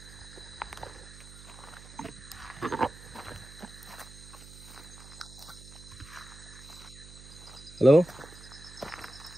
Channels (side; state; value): right; noise; hum, 16 dB below the sound